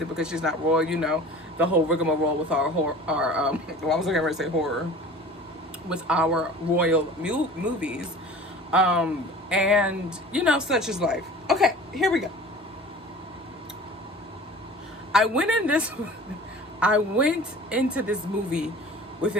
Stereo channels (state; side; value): normal; both; correlation 0.42